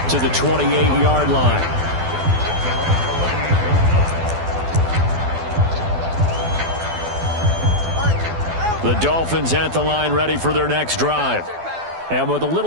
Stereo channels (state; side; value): late; left; 12 ms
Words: to the 28-yard line. The Dolphins at the line ready for their next drive. And with a